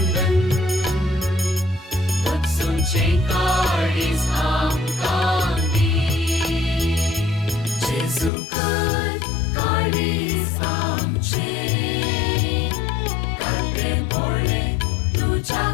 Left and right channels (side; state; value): right; drops out; at 8.3 s